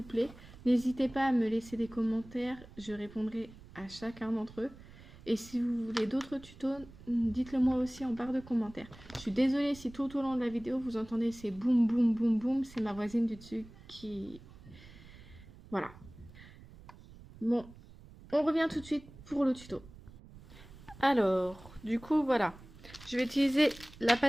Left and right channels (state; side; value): noise; right; rumble, 19 dB below the sound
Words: plaît. N'hésitez pas à me laisser des commentaires, je répondrai à chacun d'entre eux. Et si vous voulez d'autres tutos, dites-le moi aussi en barre de commentaires. Je suis désolée si tout au long de la vidéo vous entendez ces boum boum boum boum, c'est ma voisine du dessus qui... Voilà. Bon, on revient tout de suite pour le tuto. Alors, du coup, voilà. Je vais utiliser la